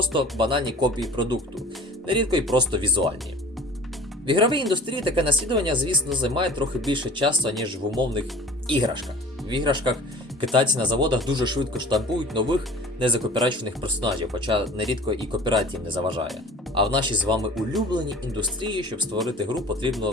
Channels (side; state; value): both; normal; correlation 0.43